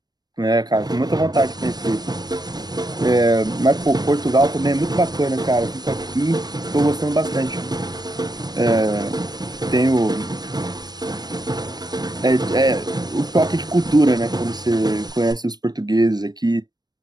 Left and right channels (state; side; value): late; left; 0.19 ms